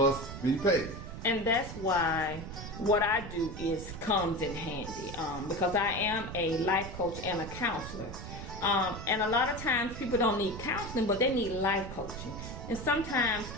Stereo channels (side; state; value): right; noise; rumble, 9 dB below the sound